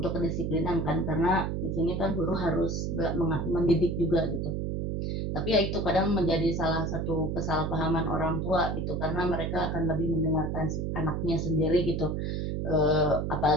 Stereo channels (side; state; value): right; noise; hum, 1 dB below the sound